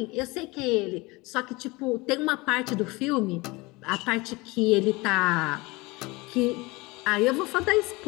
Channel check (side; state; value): right; quieter; 23.7 dB